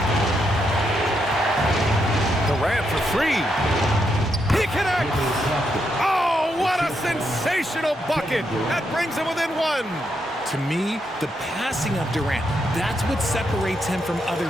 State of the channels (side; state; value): both; normal; correlation 0.80